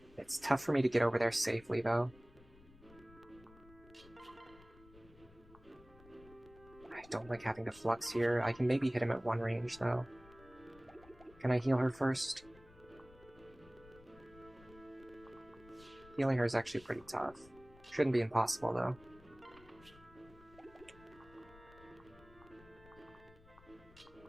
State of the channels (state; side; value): noise; left; rumble, 23 dB below the sound